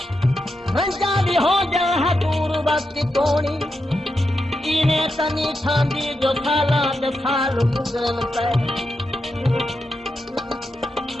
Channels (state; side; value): normal; both; correlation 0.86